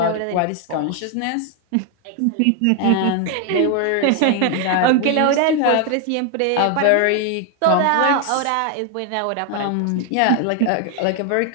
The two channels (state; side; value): different; both; correlation 0.01